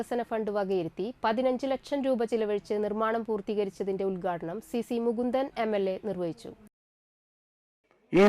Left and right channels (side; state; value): both; identical; correlation 1.00